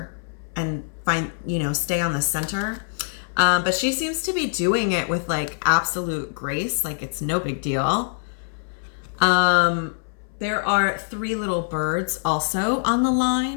and find, you know, stay on the center. But she seems to be doing it with like absolute grace, like it's no big deal. There are 3 little birds also on the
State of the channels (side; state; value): right; silent; 63 dB below the other